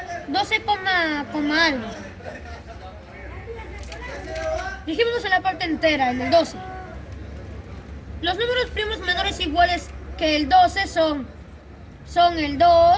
12, algo. Dijimos en la parte entera, en el 12. Los números primos menores iguales que el 12 son el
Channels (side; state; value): both; identical; correlation 1.00